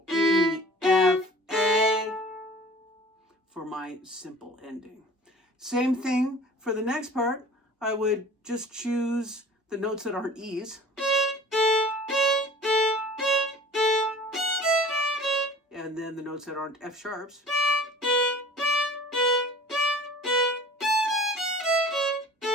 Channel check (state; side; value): normal; both; correlation 0.45